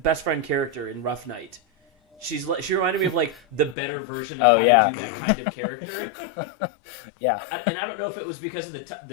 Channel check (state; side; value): drops out; right; at 3.8 s